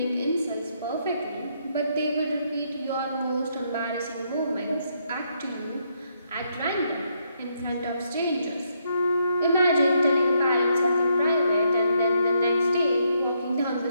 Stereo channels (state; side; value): inverted; both; correlation -0.76